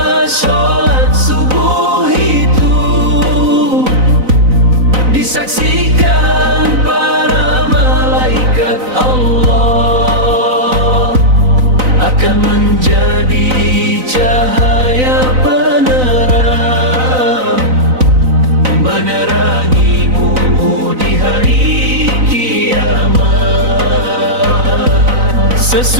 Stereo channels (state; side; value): late; left; 4.0 ms